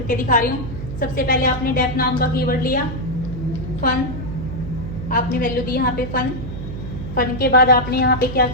दिखा रही हूँ। सबसे पहले आपने डेफ नाम का कीवर्ड लिया, फन आपने वैल्यू दी यहाँ पे फन। फन के बाद आपने यहाँ पे क्या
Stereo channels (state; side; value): noise; right; hum, 8 dB below the sound